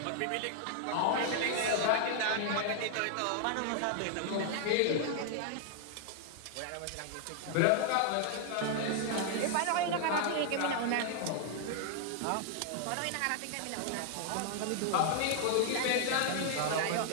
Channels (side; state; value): both; different; correlation 0.00